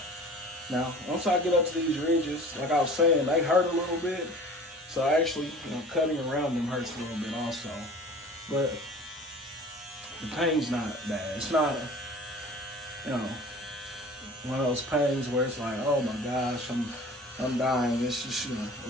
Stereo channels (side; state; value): both; normal; correlation 0.43